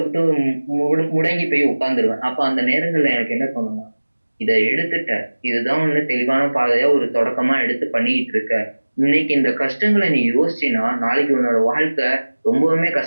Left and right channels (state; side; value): inverted; both; correlation -1.00